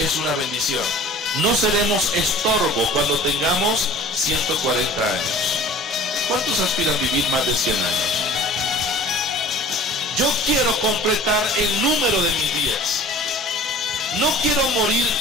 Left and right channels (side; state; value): both; normal; correlation 0.45